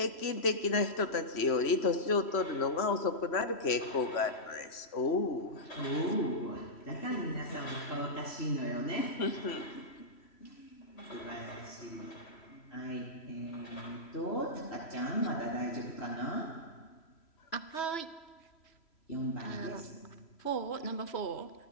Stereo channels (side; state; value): right; late; 3.1 ms